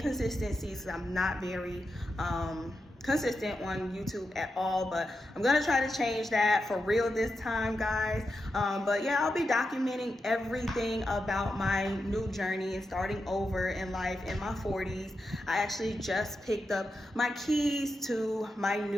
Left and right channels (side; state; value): both; normal; correlation 0.88